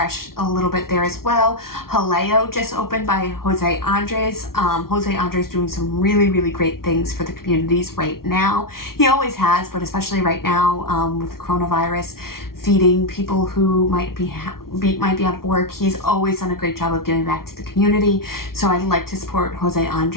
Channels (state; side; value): late; right; 0.93 ms